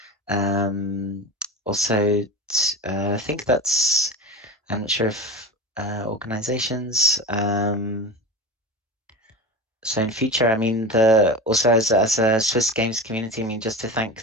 also, I think that's. I'm not sure if organizations. So in future, I mean, also as a Swiss games community, I mean, just to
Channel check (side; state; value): both; normal; correlation 0.28